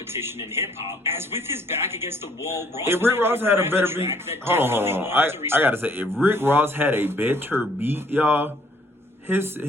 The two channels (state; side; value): normal; both; correlation 0.62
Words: in hip-hop, as with his back against the wall, if Rick Ross had a better beat, hold on. I gotta say, if Rick Ross had a better beat, y'all, his